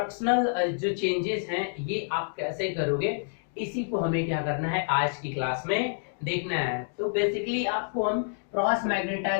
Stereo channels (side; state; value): right; silent; digital silence